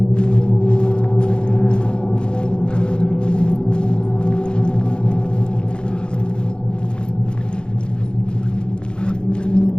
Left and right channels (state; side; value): late; right; 0.051 ms